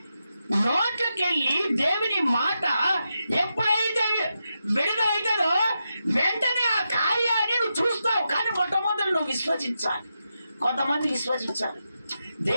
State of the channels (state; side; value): inverted; both; correlation -0.87